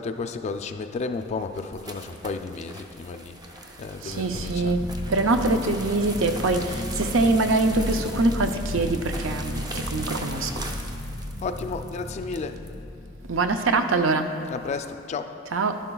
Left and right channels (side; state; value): both; normal; correlation 0.33